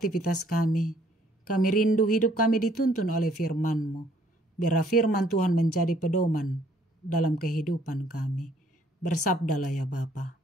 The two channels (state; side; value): normal; both; correlation 0.63